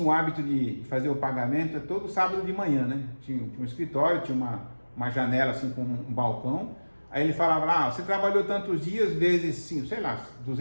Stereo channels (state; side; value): inverted; both; correlation -1.00